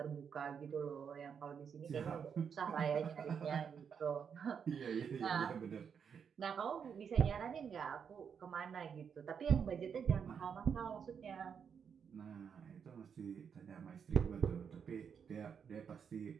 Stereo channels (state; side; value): quieter; left; 7.0 dB